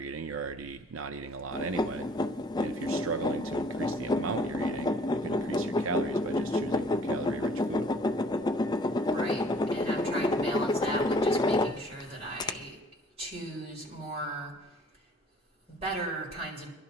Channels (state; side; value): normal; both; correlation 0.56